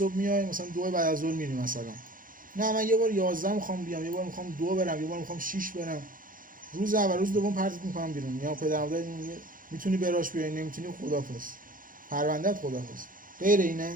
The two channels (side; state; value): left; late; 0.40 ms